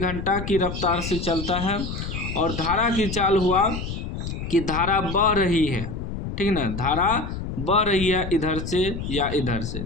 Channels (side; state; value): left; noise; rumble, 6 dB below the sound